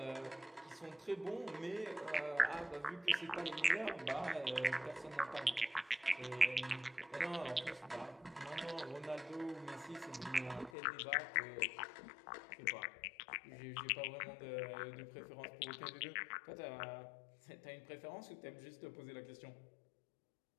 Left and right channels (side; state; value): right; drops out; at 10.7 s